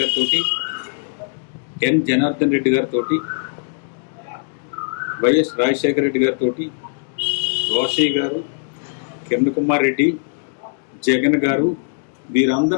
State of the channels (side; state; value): right; silent; 65 dB below the other